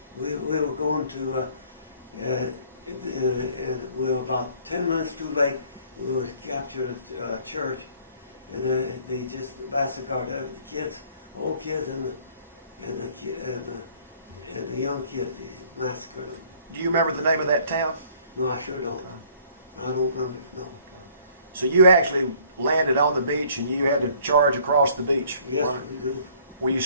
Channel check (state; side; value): inverted; both; correlation -0.58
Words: We were going to, and we were about 10 minutes too late. We were captured a church, and they just massacred the kids, old kids, and the young kids. They massacred them. Do you remember the name of that town? No, I sure don't. I don't remember. No. So you actually landed on the beach, and you had to charge across the beach. Yes, we do. Were you